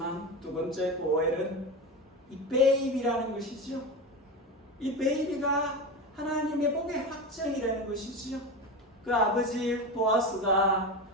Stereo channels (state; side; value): normal; both; correlation 0.22